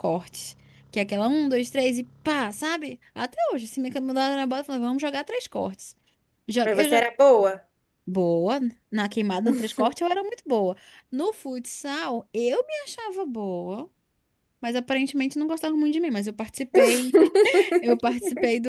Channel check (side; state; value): both; identical; correlation 1.00